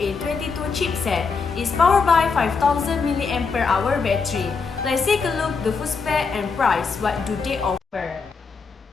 chipset. It's powered by 5000 mAh battery. Let's take a look the full spec and price. What do they offer?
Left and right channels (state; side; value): quieter; right; 5.0 dB